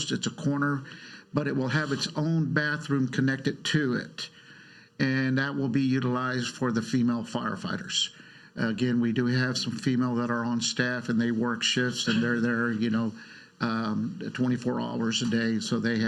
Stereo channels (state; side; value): identical; both; correlation 1.00